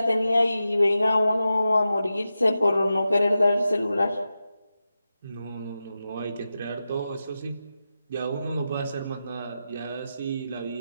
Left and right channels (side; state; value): both; inverted; correlation -0.91